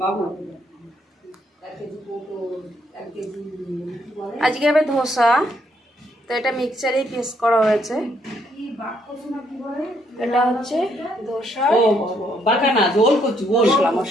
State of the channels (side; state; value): both; normal; correlation 0.72